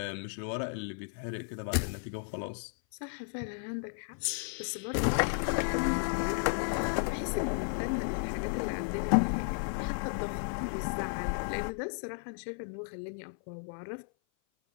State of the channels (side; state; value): right; silent; 55 dB below the other